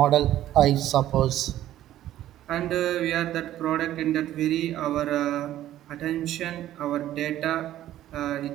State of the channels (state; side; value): quieter; left; 13.1 dB